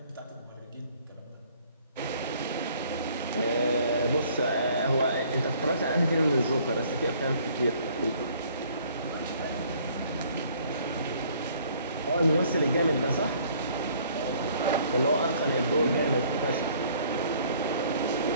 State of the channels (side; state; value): both; inverted; correlation -0.59